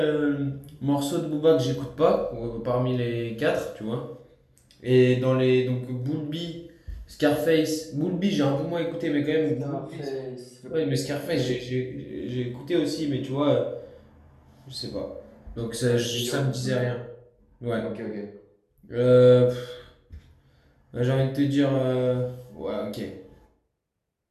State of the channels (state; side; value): identical; both; correlation 1.00